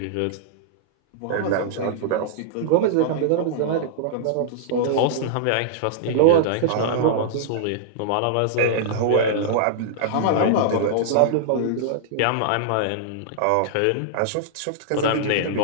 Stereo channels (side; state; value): both; different; correlation -0.02